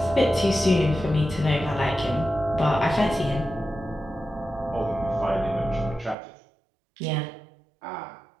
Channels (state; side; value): drops out; left; at 6.2 s